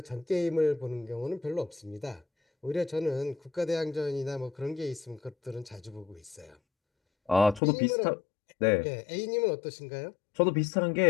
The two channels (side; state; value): right; drops out; at 7.6 s